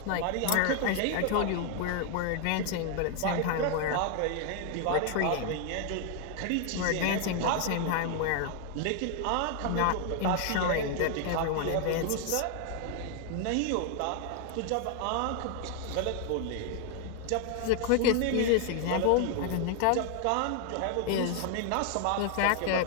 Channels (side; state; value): both; different; correlation 0.00